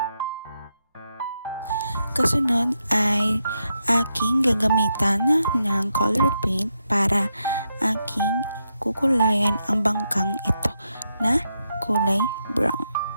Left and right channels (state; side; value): inverted; both; correlation -0.83